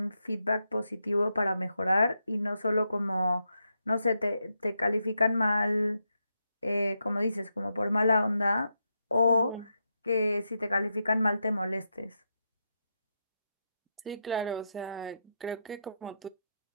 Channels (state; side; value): inverted; both; correlation -0.84